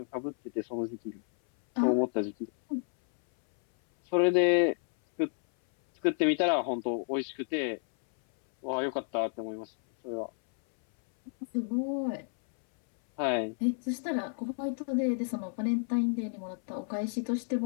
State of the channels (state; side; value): silent; right; 57 dB below the other